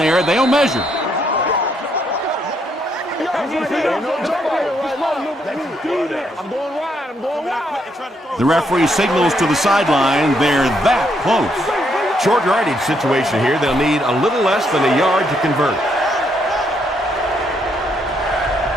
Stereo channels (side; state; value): both; normal; correlation 0.74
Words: They'll measure. The referee signals to the sideline. They're that close. Short yardage situation here. They'll need a little less than a yard to convert.